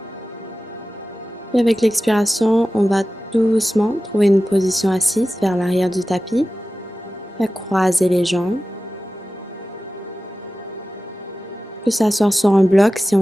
Et avec l'expiration, on va doucement trouver une position assise vers l'arrière du tapis. On va croiser les jambes. On peut s'asseoir sur un bloc si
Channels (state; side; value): normal; both; correlation 0.95